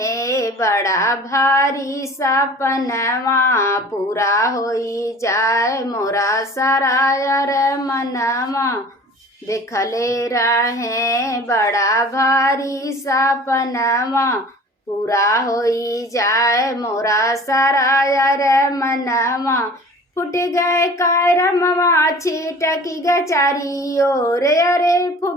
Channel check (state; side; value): normal; both; correlation 0.44